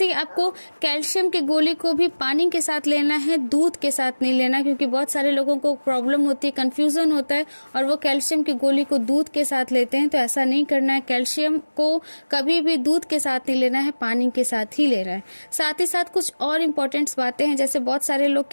ही आपको कैल्शियम की गोली को भी पानी के साथ लेना है, दूध के साथ नहीं लेना, क्योंकि बहुत सारे लोगों को प्रॉब्लम होती है, कंफ्यूजन होता है और वो कैल्शियम की गोली को दूध के साथ लेते हैं। तो ऐसा नहीं करना है, कैल्शियम को कभी भी दूध के साथ नहीं लेना है, पानी के साथ ही लेना है। साथ ही साथ कुछ और इम्पोर्टेंट्स बातें हैं, जैसे बहुत सारे लोग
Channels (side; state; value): both; inverted; correlation -1.00